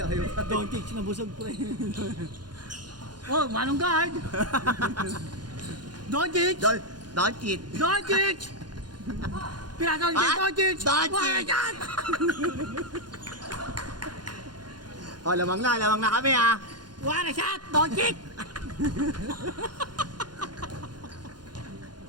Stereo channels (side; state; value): left; late; 0.70 ms